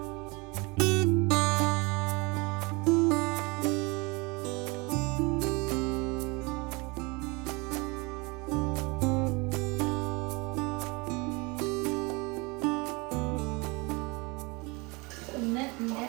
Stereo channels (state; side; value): quieter; left; 27.1 dB